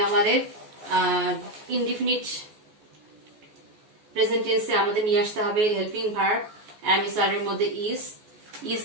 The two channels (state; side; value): late; left; 14 ms